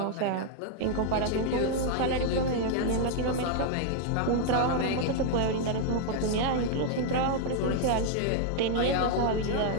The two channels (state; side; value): different; both; correlation 0.00